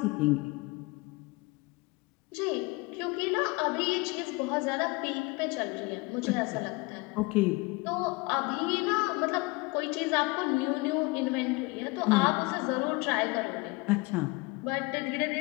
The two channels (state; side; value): quieter; right; 25.4 dB